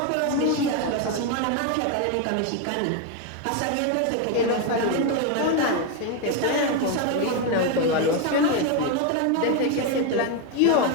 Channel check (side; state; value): both; different; correlation 0.02